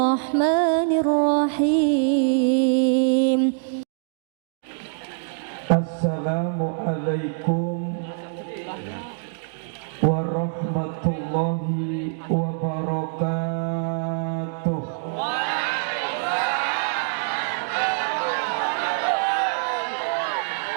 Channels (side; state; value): left; silent; digital silence